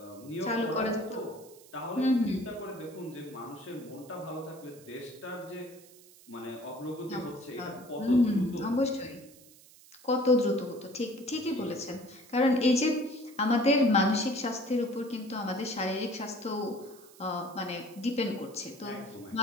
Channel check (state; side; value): noise; right; hiss, 23 dB below the sound